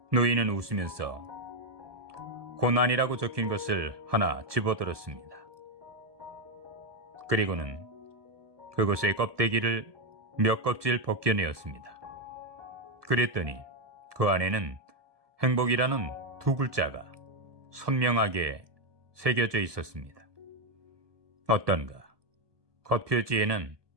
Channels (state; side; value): late; left; 1.2 ms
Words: 노인은 웃으면서 고난이라고 적힌 것을 하나 집어들었습니다. 그리고는 그것의 껍데기를 몇 껍질 벗겨내었습니다. 그랬더니 그 안에는 행복이라는 두 글자가 선명하게 새겨져 있었습니다. 어떤가? 겉표지에는